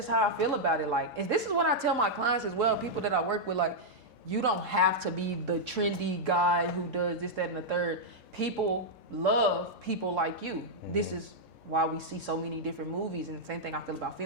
how I feel about it. Like, this is what I tell my clients as well, people that I work with, like, you don't have to be the trendy guy who does this, that, and the third. People love people like you. This is why we see so many different movies, and the same thing I feel about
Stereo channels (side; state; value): both; normal; correlation -0.05